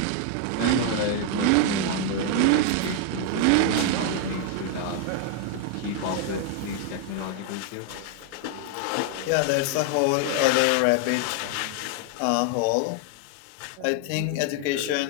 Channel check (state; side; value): different; both; correlation 0.00